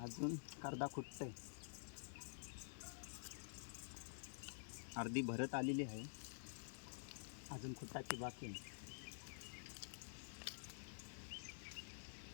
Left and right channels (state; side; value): silent; right; digital silence